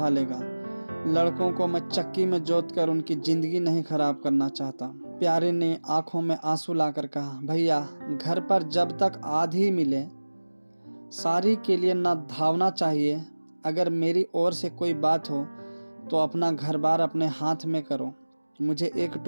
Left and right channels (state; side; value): inverted; both; correlation -1.00